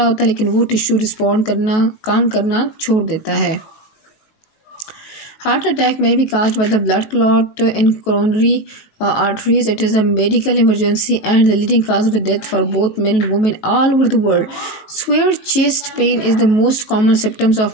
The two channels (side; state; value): right; late; 18 ms